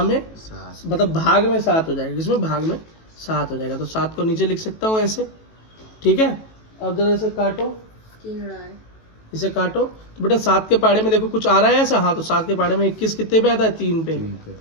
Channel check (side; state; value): right; late; 18 ms